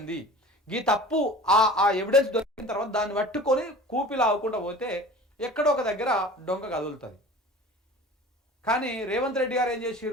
గీ తప్పు ఆ ఎవిడెన్స్ దొరికిన తర్వాత దాన్ని పట్టుకొని కూపిలావకుండా పోతే ఎక్కడో ఒక దగ్గర డొంక కదులుతుంది. కానీ రేవంత్ రెడ్డి గారు ఏం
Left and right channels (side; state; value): both; normal; correlation 0.41